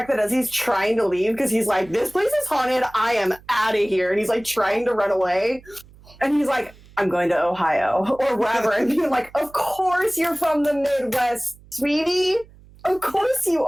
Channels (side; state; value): right; noise; hum, 24 dB below the sound